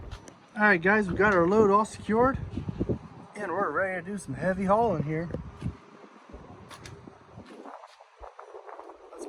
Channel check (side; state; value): both; identical; correlation 1.00